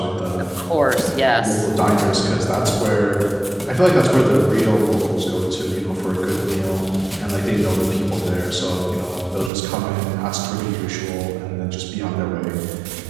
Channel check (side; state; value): left; drops out; at 9.5 s